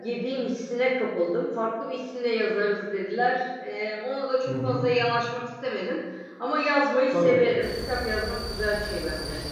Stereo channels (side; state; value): both; identical; correlation 1.00